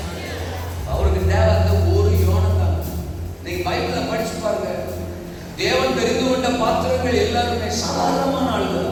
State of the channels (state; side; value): identical; both; correlation 1.00